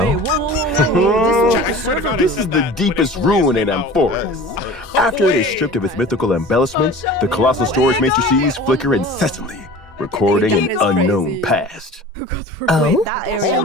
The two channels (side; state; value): both; normal; correlation 0.40